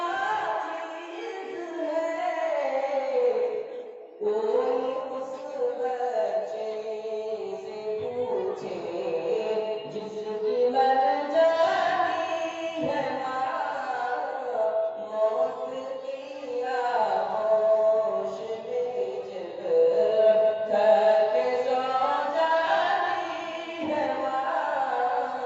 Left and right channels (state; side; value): identical; both; correlation 1.00